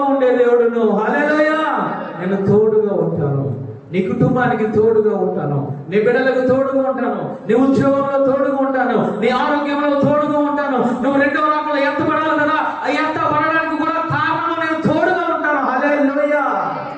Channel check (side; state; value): both; identical; correlation 1.00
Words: ఉండే దేవుడును. హల్లెలూయా. నేను తోడుగా ఉంటాను, నీ కుటుంబానికి తోడుగా ఉంటాను, నీ బిడ్డలకు తోడుగా ఉంటాను, నీ ఉద్యోగంలో తోడుగా ఉంటాను, నీ ఆరోగ్యంలో తోడుగా ఉంటాను. నువ్వు రెండవ రాకడలో ఎత్తబడాలి కదా, ఆ ఎత్తబడడానికి కూడా కారణం నేను తోడుగా ఉంటాను. హల్లెలూయా.